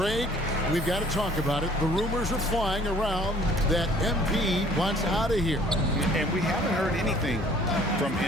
we've got to talk about it. The rumors are flying around that MP wants out of here. And we haven't heard anything from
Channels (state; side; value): normal; both; correlation 0.55